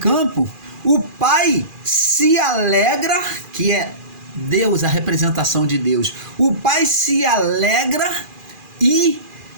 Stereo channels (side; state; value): left; late; 2.4 ms